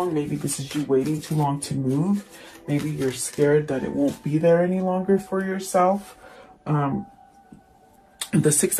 Maybe this is you waiting too long to move. Maybe you're scared that it won't be there any longer for yourself. The Six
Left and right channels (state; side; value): identical; both; correlation 1.00